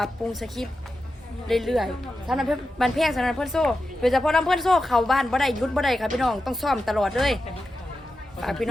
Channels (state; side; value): normal; both; correlation 0.91